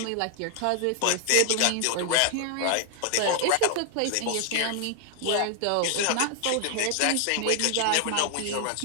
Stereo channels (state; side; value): different; both; correlation 0.00